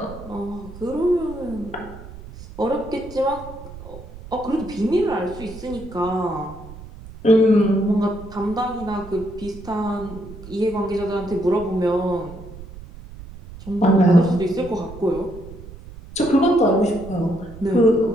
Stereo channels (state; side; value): noise; right; rumble, 16 dB below the sound